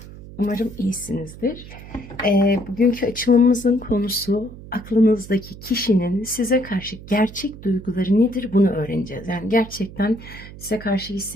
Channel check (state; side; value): noise; right; hum, 15 dB below the sound